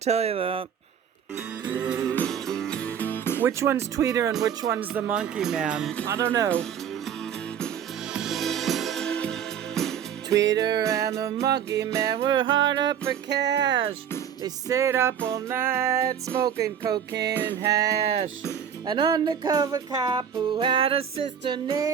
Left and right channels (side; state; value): left; quieter; 8.5 dB